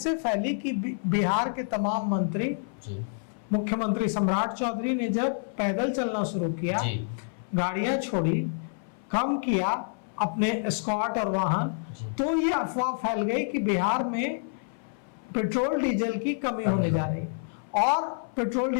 फैली कि बिहार के तमाम मंत्री, मुख्यमंत्री सम्राट चौधरी ने जब पैदल चलना शुरू किया, गाड़ियां छोड़ी, कम किया अपने स्क्वाड और वाहन, तो ये अफवाह फैल गई कि बिहार में पेट्रोल डीजल की कमी होने जा रही है। और पेट्रोल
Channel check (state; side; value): silent; right; 56 dB below the other